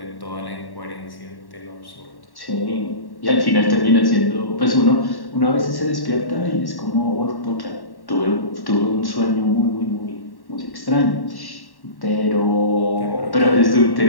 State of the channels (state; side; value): late; right; 1.1 ms